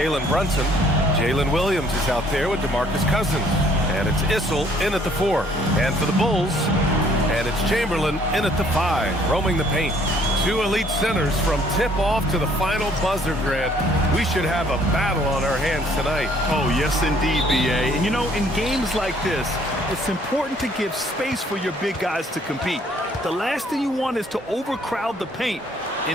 Brunson. Jalen Williams is out there with DeMarcus Cousins. And it's Issel in at the 4. And for the Bulls, and it's Chamberlain in at the 5, roaming the paint. Two elite centers from tip-off to the final buzzer, Grant. We should have a battle on our hands tonight. Oh, yes, indeed, B.A. And, you know, in games like this, it's important to give space for your big guys to compete. The last thing you want is to overcrowd the paint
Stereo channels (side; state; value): both; normal; correlation 0.61